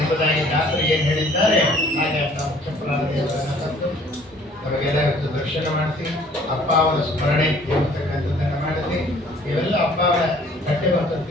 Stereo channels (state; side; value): normal; both; correlation 0.56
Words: ದಾಸರು ಏನು ಹೇಳಿದ್ದಾರೆ ಹಾಗೆ ಅಂತ ಮುಖ್ಯ ಪ್ರಾಣದೇವರನ್ನು ತಂದು ನಮಗೆಲ್ಲ ಇವತ್ತು ದರ್ಶನ ಮಾಡಿಸಿ ಅಪ್ಪ ಅವರ ಸ್ಮರಣೆ ಎಂಬತಕ್ಕಂಥದ್ದನ್ನು ಮಾಡಿಸಿ ಇವೆಲ್ಲ ಅಪ್ಪ ಅವರ ಕಟ್ಟೆ